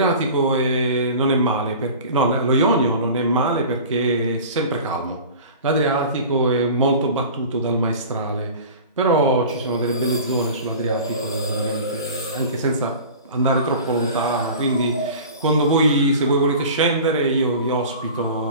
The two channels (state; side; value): inverted; both; correlation -0.39